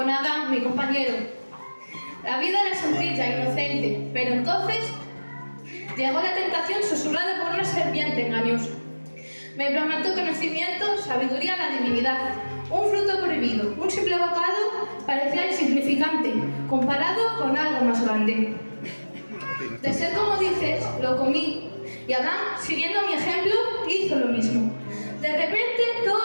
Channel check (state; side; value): inverted; both; correlation -1.00